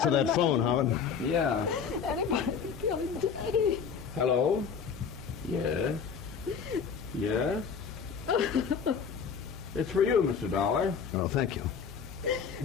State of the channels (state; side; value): quieter; right; 6.5 dB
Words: that phone, Howard. Yeah. Anybody can kill him, Daddy. Hello? Yes? Yes? It's for you, Mr. Dollar. Oh, thank you.